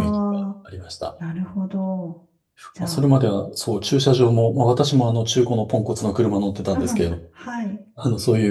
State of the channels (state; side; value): identical; both; correlation 1.00